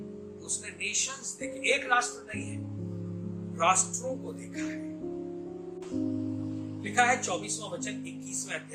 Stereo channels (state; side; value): identical; both; correlation 1.00